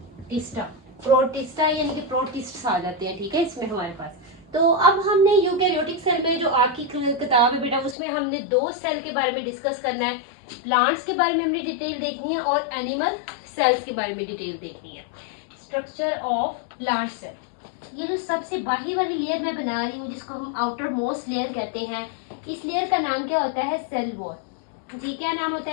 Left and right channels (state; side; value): drops out; right; at 8.0 s